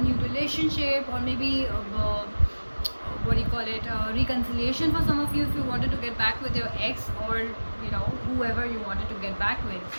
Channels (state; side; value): inverted; both; correlation -1.00